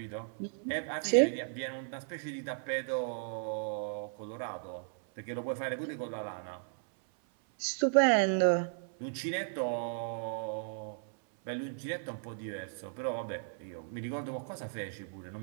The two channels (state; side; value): silent; left; 54 dB below the other